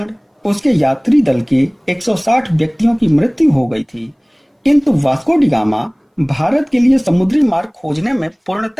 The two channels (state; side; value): identical; both; correlation 1.00